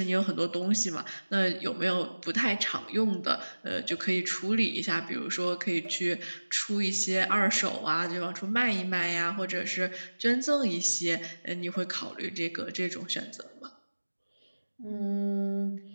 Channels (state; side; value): inverted; both; correlation -1.00